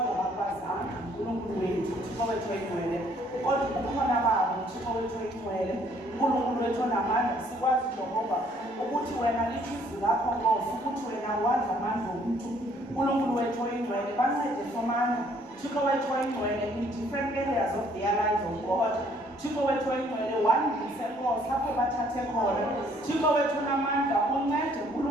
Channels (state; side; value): normal; both; correlation 0.63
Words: bakwazanga uNkulunkulu wethu Thixo wethu oyingcwele kodwa kukhona babo Thixo wethu oyingcwele uNkulunkulu wethu onamandla sikwazi Jehova ukuthi wena lithi izwi lakho Nkosi ukuthi wena wazi amandla omntu uNkulunkulu wethu oyingcwele bancede somandla Thixo wethu oyingcwele in different areas of their lives of God Thixo wethu oyingcwele wandise Nkosi apho bathathe khona Thixo wethu onamandla uncede